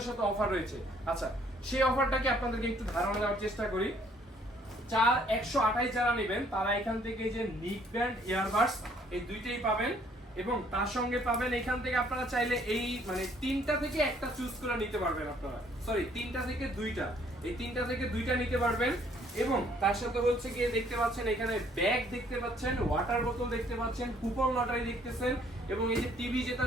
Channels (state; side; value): normal; both; correlation 0.63